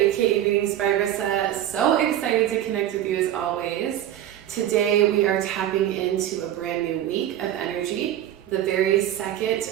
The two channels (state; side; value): quieter; left; 11.7 dB